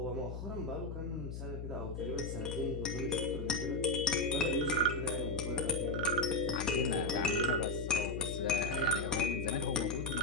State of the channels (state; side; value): noise; left; hum, 6 dB below the sound